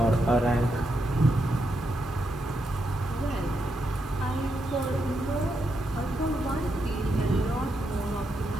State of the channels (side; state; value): both; normal; correlation 0.83